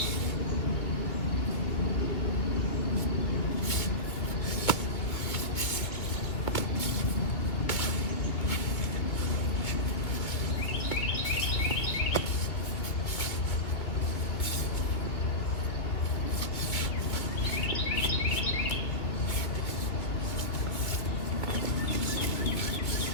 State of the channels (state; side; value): late; right; 2.8 ms